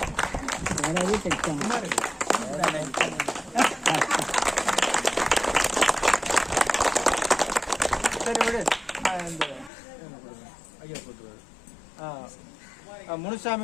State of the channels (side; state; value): right; drops out; at 9.7 s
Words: சரி விடு, இந்த ஐயா போட்டுருவாரு.